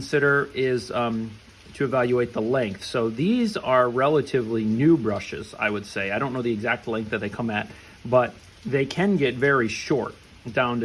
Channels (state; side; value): identical; both; correlation 1.00